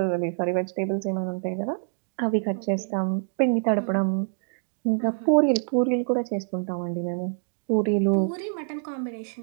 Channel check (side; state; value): left; silent; digital silence